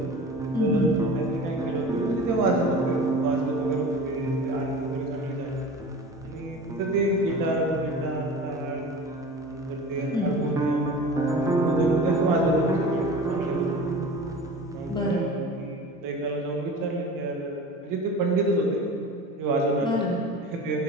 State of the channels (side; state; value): both; normal; correlation 0.36